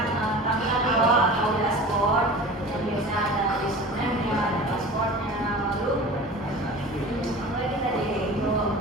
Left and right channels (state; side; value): normal; both; correlation 0.38